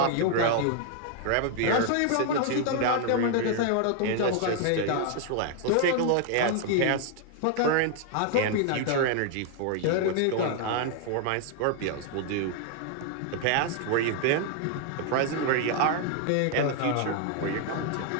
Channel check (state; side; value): different; both; correlation 0.00